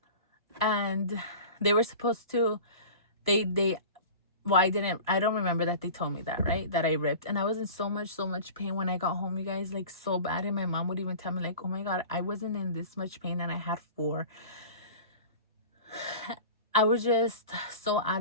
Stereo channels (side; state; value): both; inverted; correlation -0.37